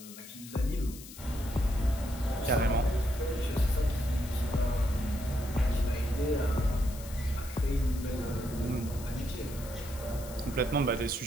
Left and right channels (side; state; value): left; noise; hiss, 15 dB below the sound